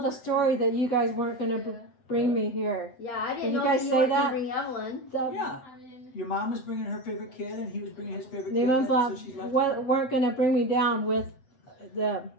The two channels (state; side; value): late; right; 7.8 ms